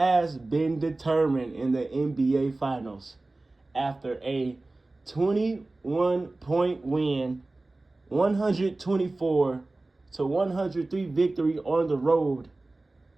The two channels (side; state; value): left; quieter; 3.0 dB